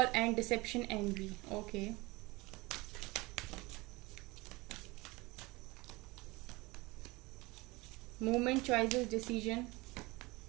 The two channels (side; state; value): left; quieter; 22.9 dB